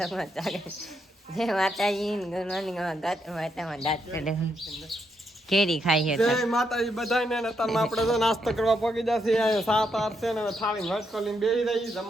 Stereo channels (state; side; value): normal; both; correlation 0.79